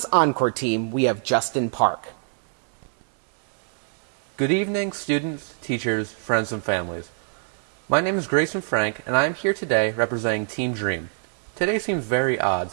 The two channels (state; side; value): silent; left; digital silence